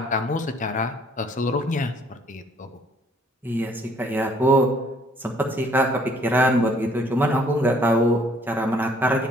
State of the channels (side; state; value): both; normal; correlation 0.61